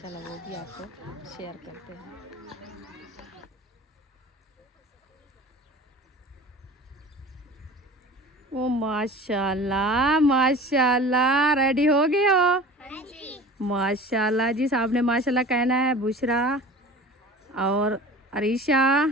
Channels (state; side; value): normal; both; correlation 0.40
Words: वो भी आपको शेयर करते हैं। ओ माशाल्लाह माशाल्लाह रेडी हो गए हो माशाल्लाह जी। साहब ने माशाल्लाह कहना है बुशरा और अरीशा